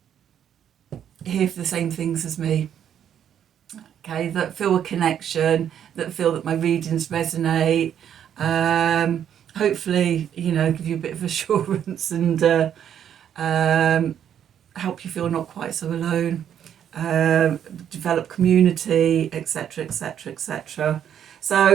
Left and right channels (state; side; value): quieter; left; 9.4 dB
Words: here for the same things as me. Okay, that feel a connection, that feel that my readings resonate. Hopefully, you know, give you a bit of assurance and help you feel not quite so alone. Develop community, etc., etc., etc.